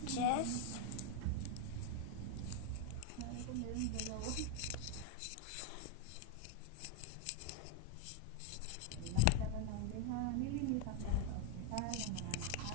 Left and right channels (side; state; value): both; different; correlation 0.01